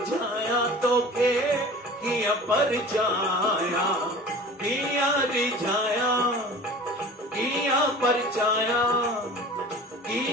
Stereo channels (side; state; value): both; normal; correlation 0.41